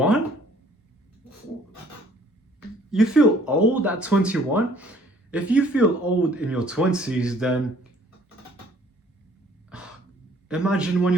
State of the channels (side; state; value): both; normal; correlation 0.58